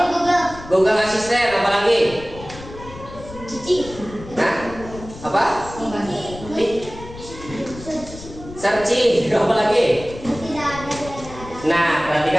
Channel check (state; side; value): noise; left; rumble, 15 dB below the sound